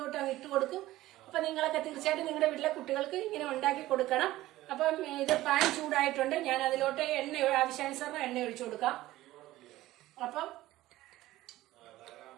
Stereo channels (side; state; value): left; quieter; 16.3 dB